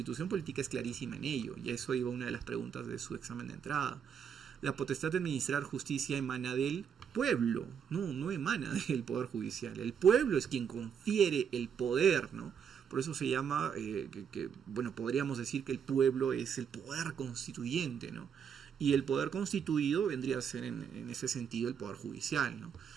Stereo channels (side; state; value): left; quieter; 7.5 dB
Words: Política es clarísima en ello, y a eso iba una de las preguntas de su examen de entrada. La potestad de administrar justicia emana del pueblo, no emana del Poder Judicial. El pueblo es quien confiere el poder, ¿no? Por eso se llama, bueno, podríamos decir que el pueblo es el poder constituyente, ¿no? Y el poder constituido vendría a ser en ese sentido el Poder Judicial, ¿no?